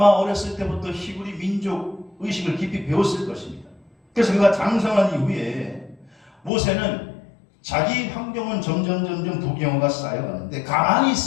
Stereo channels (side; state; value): right; drops out; at 6.5 s